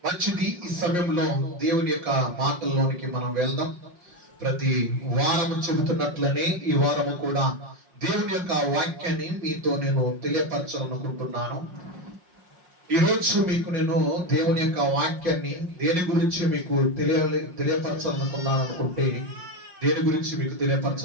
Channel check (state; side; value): late; left; 5.6 ms